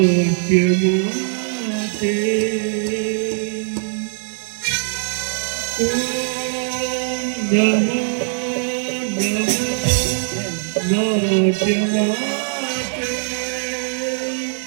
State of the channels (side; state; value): left; silent; 65 dB below the other